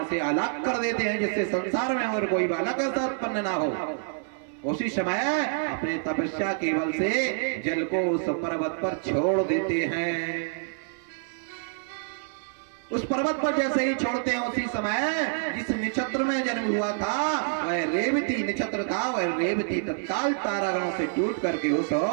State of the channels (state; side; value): silent; left; 58 dB below the other